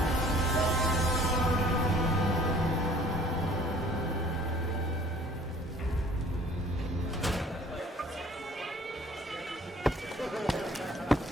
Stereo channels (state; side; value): normal; both; correlation 0.54